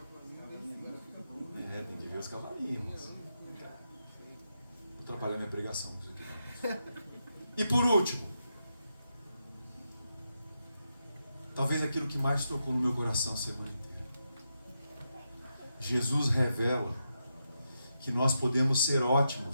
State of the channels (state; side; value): inverted; both; correlation -0.85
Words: Tem que ver os cavalinhos, irmãos. Vou atrapalhar minha pregação com isso aqui. E por último, talvez aquilo que mais tocou no meu coração a semana inteira. Jesus revela que nós podemos ser